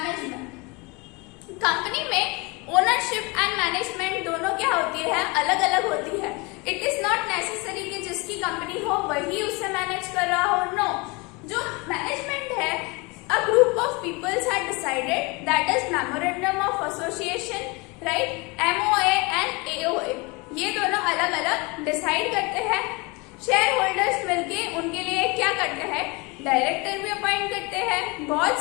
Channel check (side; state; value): right; quieter; 27.2 dB